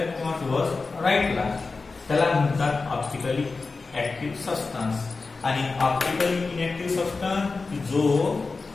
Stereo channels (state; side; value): quieter; right; 4.0 dB